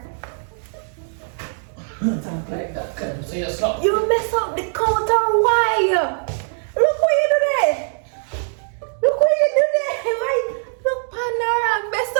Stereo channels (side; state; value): left; silent; digital silence